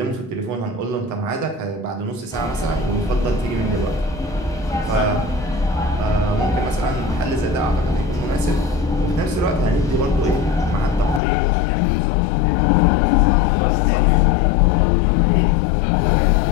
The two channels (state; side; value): drops out; right; at 11.2 s